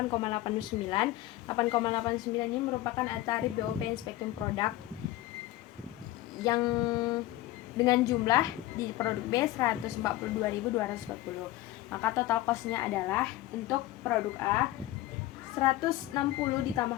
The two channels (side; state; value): right; quieter; 16.0 dB